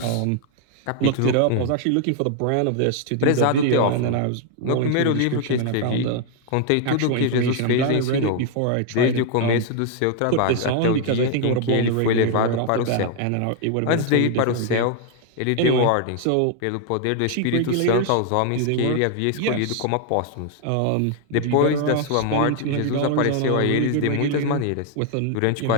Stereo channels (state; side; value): different; both; correlation 0.00